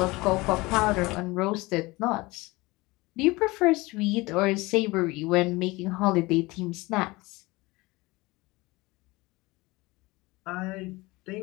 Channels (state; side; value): quieter; right; 22.2 dB